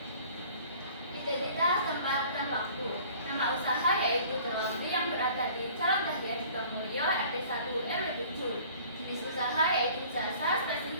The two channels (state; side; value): inverted; both; correlation -0.50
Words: Identitas tempat dan waktu. Nama usaha yaitu Laundry yang berada di Jalan Dahlia Sukamulyo RT 1 RW 7. Jenis usaha yaitu jasa,